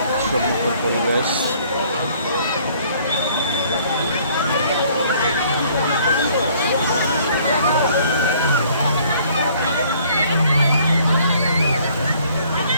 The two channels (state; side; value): inverted; both; correlation -0.59